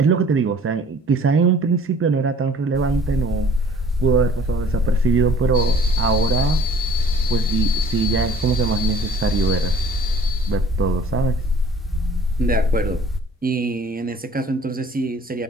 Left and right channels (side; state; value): both; normal; correlation 0.52